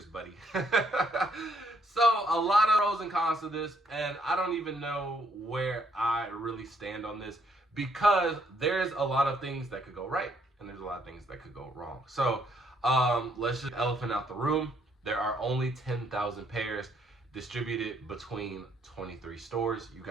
buddy. So a lot of pros and cons to this, and I don't even know where I really stand on this, because there's a lot of things that could go right and there's a lot of things that could go wrong. So let's just elephant out the room. There are only 10,000 pairs. distributed between 23 stores. You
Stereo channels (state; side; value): normal; both; correlation 0.69